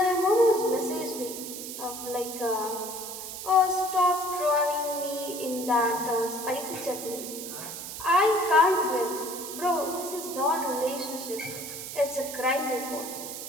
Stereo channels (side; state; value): right; noise; hiss, 8 dB below the sound